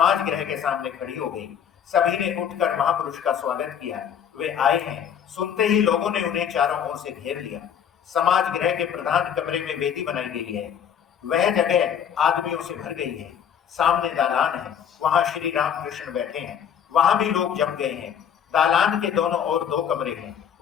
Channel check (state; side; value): quieter; right; 8.4 dB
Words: गृह के सामने खड़ी हो गई। सभी ने उठकर महापुरुष का स्वागत किया। वे आए हैं। सुनते ही लोगों ने उन्हें चारों ओर से घेर लिया। समाज गृह के प्रधान कमरे में वेदी बनाई गई है। वह जगह आदमियों से भर गई है। सामने दालान है, वहां श्री रामकृष्ण बैठे हैं। वहां भी लोग जम गए हैं। दालान के दोनों ओर 2 कमरे हैं,